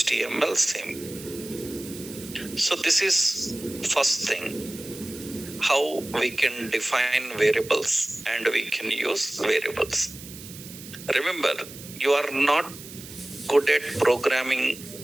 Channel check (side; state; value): right; noise; hiss, 15 dB below the sound